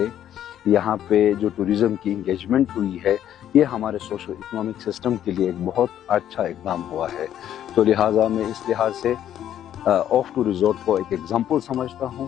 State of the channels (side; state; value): right; quieter; 10.9 dB